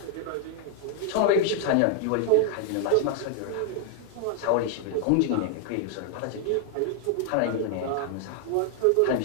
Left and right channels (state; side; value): different; both; correlation 0.00